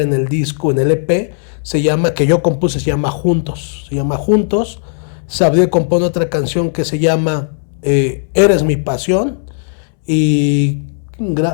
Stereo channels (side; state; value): right; silent; 70 dB below the other